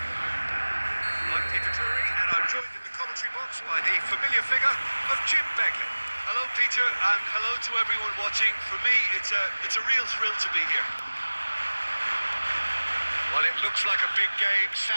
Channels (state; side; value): inverted; both; correlation -1.00